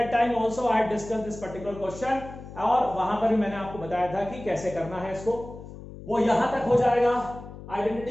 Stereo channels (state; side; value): noise; left; hum, 14 dB below the sound